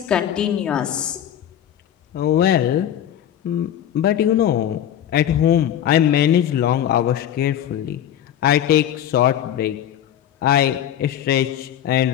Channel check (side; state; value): right; quieter; 10.5 dB